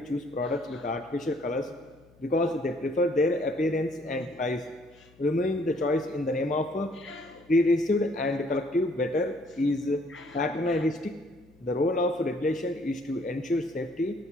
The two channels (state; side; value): noise; left; hum, 28 dB below the sound